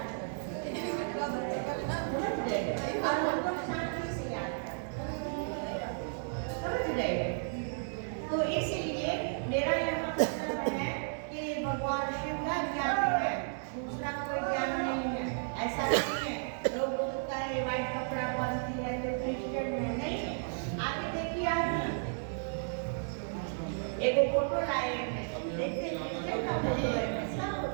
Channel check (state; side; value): silent; left; 55 dB below the other